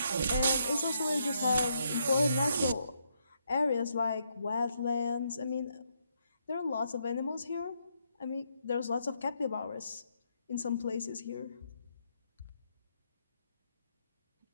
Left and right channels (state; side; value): inverted; both; correlation -0.76